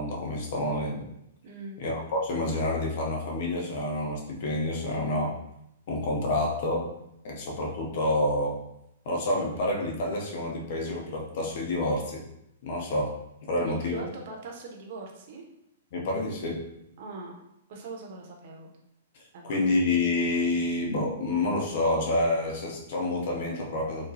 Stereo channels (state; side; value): inverted; both; correlation -0.37